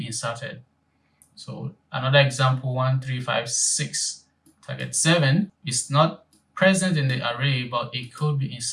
inserted. So another example, 1, 3, 5, 6. Target 7 is not present in the array, but it could be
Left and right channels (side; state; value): both; identical; correlation 1.00